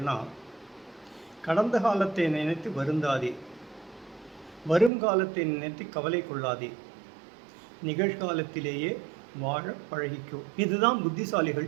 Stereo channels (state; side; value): drops out; left; at 4.9 s